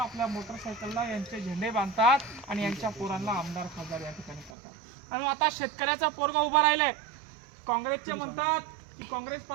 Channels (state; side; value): drops out; left; at 4.5 s